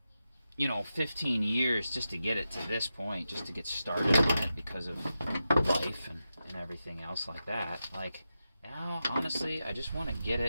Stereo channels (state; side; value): inverted; both; correlation -0.90